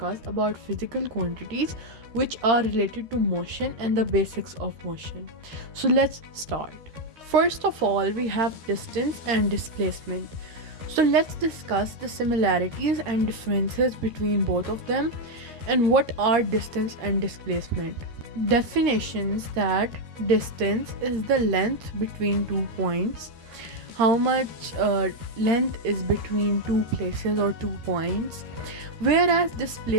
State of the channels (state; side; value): late; left; 13 ms